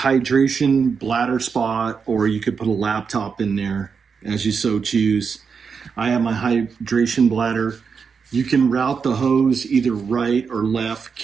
bladder spot, or you could put a laptop in there as you so choose. I have my hydration bladder. You can route the hose either right or left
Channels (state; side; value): quieter; left; 5.8 dB